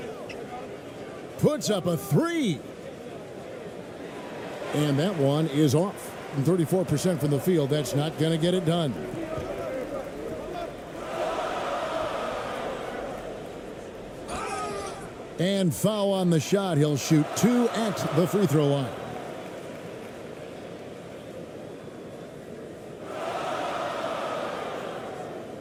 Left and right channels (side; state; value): both; identical; correlation 1.00